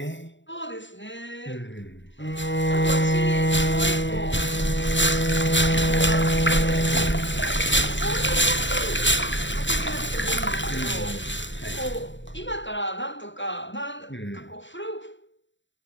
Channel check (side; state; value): right; late; 0.54 ms